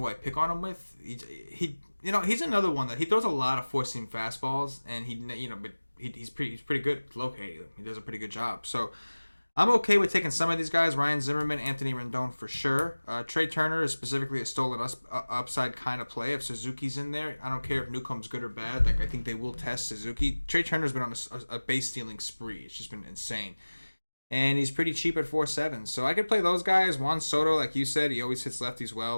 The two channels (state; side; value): inverted; both; correlation -1.00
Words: I pick on him with. He's another one that he throws a lot of four seam fastballs, and he's pretty good at locating them. He does a pretty good job. So I'm okay with taking some of these guys: Ryan Zimmerman, Anthony Rendon for sure. Trey Turner is specifically a stolen upside kind of play. If Suzuki's in there, I don't care if Newcomb's good or bad. I think they will test Suzuki. Trey Turner's been on a base stealing spree. It's just been insane. And he's pretty cheap at 4.7. So I could play those guys. Juan Soto, like you said, he always hits lefties